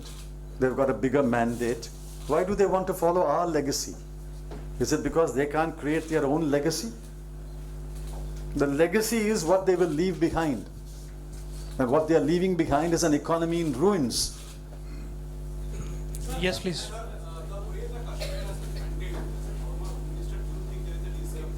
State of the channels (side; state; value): both; identical; correlation 1.00